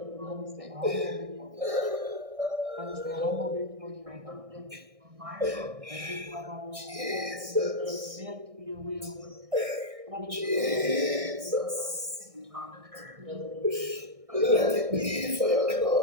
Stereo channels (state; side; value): late; left; 1.6 ms